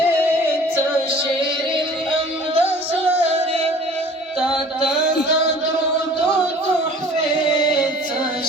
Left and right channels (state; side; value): normal; both; correlation 0.48